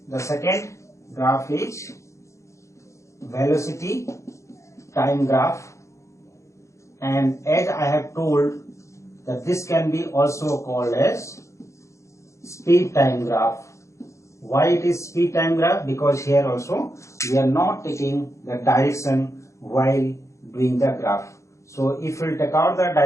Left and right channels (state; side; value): late; right; 0.14 ms